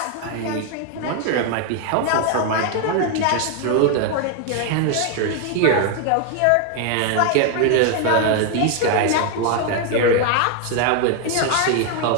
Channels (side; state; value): both; different; correlation 0.01